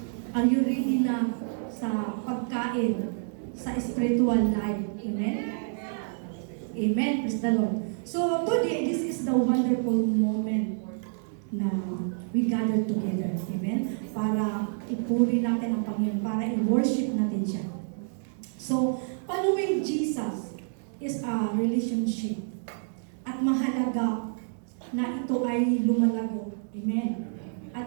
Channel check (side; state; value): left; silent; digital silence